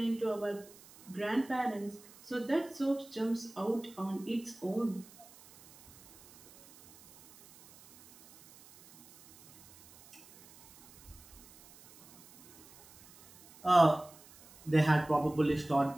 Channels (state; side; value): noise; right; hiss, 23 dB below the sound